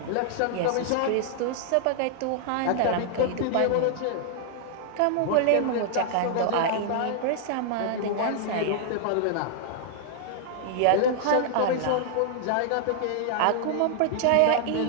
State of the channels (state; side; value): different; both; correlation -0.01